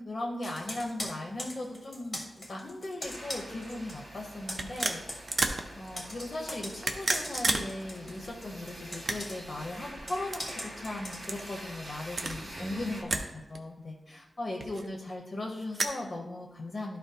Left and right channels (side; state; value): both; normal; correlation 0.92